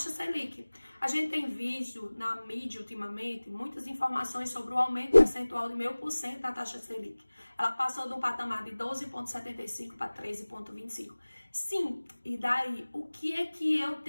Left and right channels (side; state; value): both; inverted; correlation -1.00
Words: Selic. A gente tem visto na mídia ultimamente muitas informações sobre o aumento percentual de 0,5% da taxa Selic. Ela passou do patamar de 12,75 para 13,25. Sim, e daí? O que é que eu